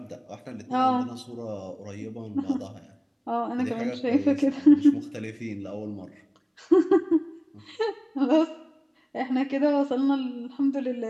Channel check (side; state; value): both; identical; correlation 1.00